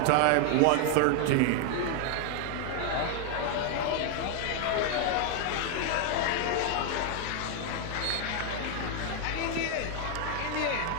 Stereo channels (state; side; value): different; both; correlation 0.00